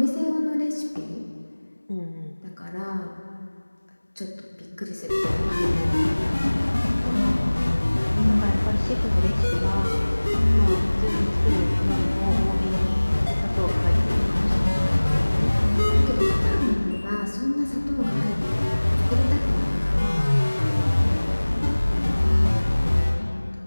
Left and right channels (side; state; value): both; inverted; correlation -1.00